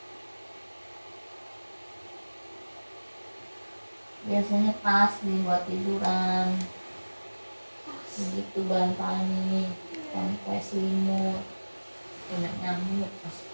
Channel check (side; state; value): both; inverted; correlation -1.00